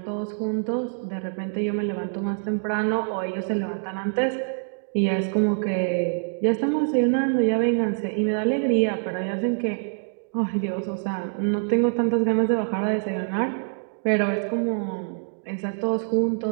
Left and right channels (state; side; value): silent; left; digital silence